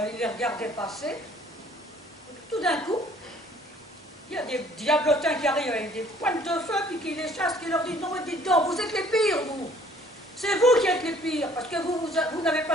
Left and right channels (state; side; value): normal; both; correlation 0.58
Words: il les regardait passer. Tout d'un coup, il y a des diablotins qui arrivent avec des pointes de feu, puis qui les chassent, qui leur disent « Non, mais dites donc, vous êtes les pires, vous. C'est vous qui êtes les pires, parce que vous n'avez